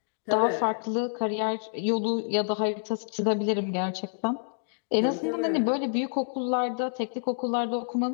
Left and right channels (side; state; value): right; silent; digital silence